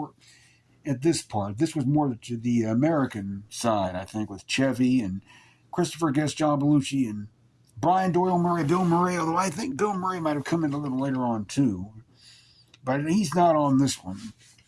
at this part. This was more to the American side, I think, with Chevy and Christopher Guest, John Belushi, and Brian Doyle Murray, Bill Murray, although I think Bill Murray might have come in a little later on too. But he's not on this one.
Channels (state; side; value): identical; both; correlation 1.00